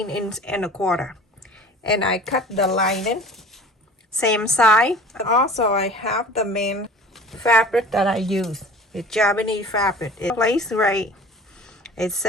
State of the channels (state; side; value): normal; both; correlation 0.43